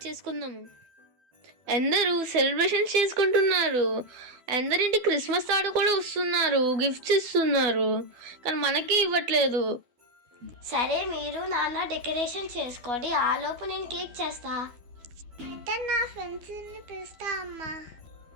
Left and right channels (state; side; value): late; left; 12 ms